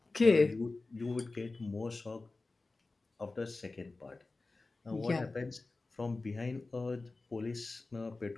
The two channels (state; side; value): quieter; right; 3.5 dB